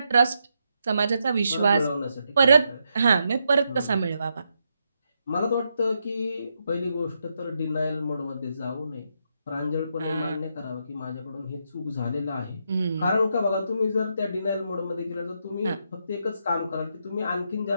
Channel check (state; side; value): inverted; both; correlation -0.81